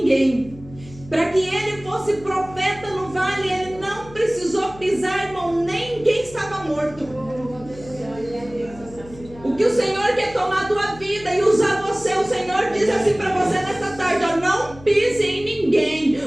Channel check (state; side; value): noise; left; hum, 19 dB below the sound